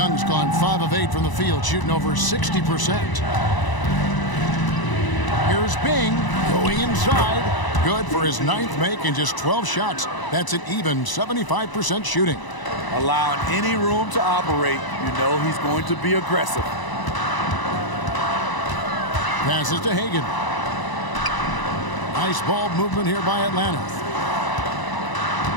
gone 5 of 8 from the field, shooting over 60%. Here's Bing going inside. Good for his 9th make and just 12 shots. That's an even 75% shooting. Allowing any room to operate, you know he's going to be aggressive. Passes to Hagan. Nice ball movement here by Atlanta.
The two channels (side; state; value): right; late; 1.0 ms